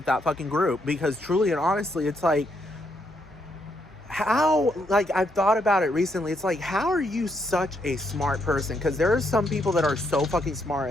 that fucking group, because truly and honestly, it's like, how, like, I've thought about it recently. It's like, how are you such a smart person? Because there are some people that are so fucking smart,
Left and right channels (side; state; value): both; normal; correlation 0.76